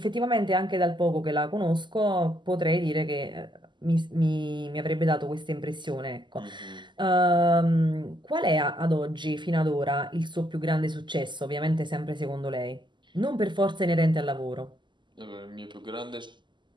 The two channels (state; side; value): late; left; 0.22 ms